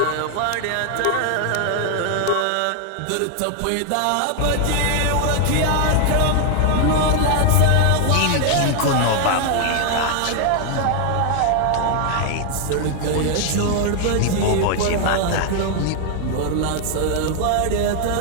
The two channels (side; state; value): both; different; correlation 0.00